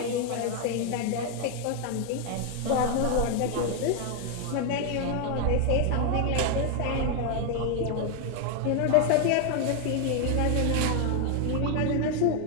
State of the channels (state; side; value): different; both; correlation 0.01